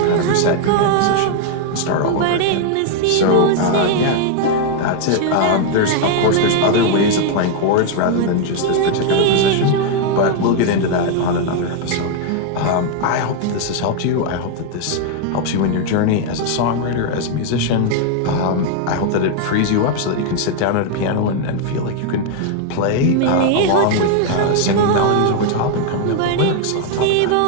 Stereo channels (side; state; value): both; different; correlation 0.00